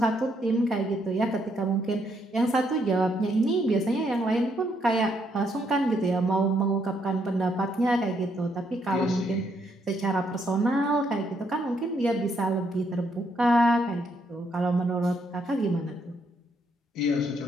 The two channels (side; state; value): both; normal; correlation 0.74